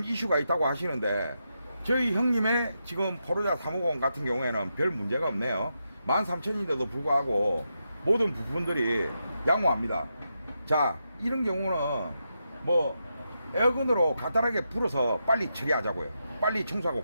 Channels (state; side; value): inverted; both; correlation -0.85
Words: 이슈가 있다고 하시는데, 저희 형님의 지금 포르자 350 같은 경우에는 별 문제가 없네요. 13,000인데도 불구하고 모든 부품들이 양호합니다. 자, 이런 경우는 뭐 에어건으로 간단하게 불어서 빨리 처리하자고요. 빨리 청소하고